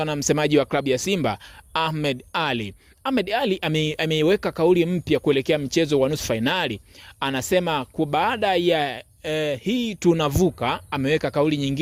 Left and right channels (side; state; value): both; identical; correlation 1.00